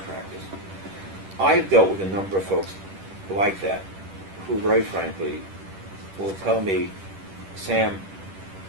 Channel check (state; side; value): late; left; 10 ms